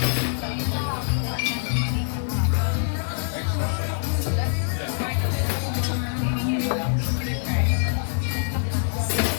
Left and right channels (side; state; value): right; silent; digital silence